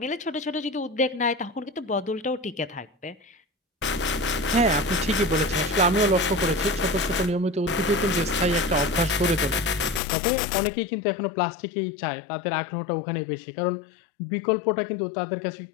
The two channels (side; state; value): right; drops out; at 10.0 s